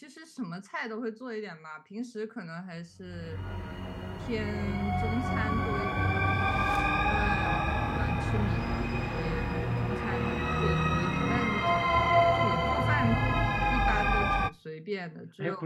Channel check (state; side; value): identical; both; correlation 1.00